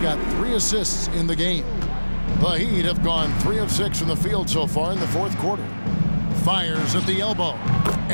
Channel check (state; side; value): inverted; both; correlation -1.00